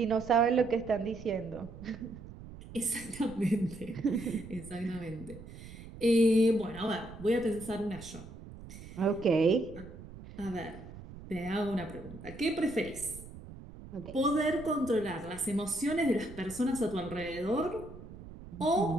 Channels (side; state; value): right; noise; rumble, 15 dB below the sound